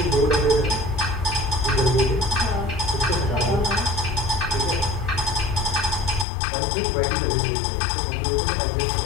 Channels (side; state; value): right; drops out; at 6.2 s